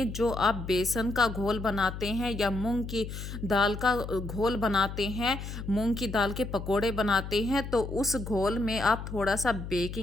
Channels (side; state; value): left; noise; hum, 8 dB below the sound